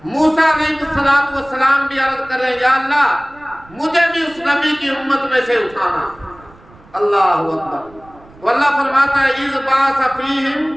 موسیٰ علیہ السلام بھی عرض کر رہے ہیں یا اللہ مجھے بھی اس نبی کی امت میں سے اٹھانا۔ اللہ اکبر۔ تو اللہ فرماتا ہے اذ بعث فیہم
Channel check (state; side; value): noise; right; rumble, 25 dB below the sound